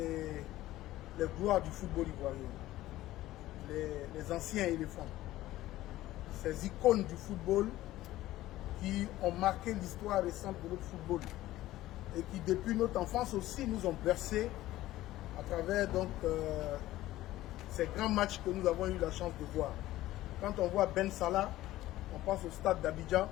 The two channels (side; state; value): right; quieter; 15.7 dB